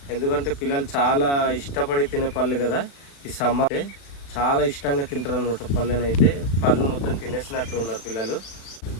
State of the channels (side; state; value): right; late; 36 ms